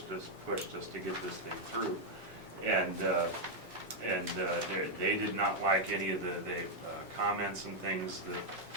us to get this thing through, and they did not like any of the comments and things that.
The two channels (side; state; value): both; normal; correlation -0.01